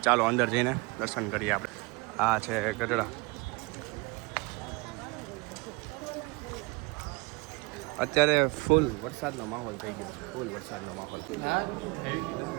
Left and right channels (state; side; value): quieter; left; 26.1 dB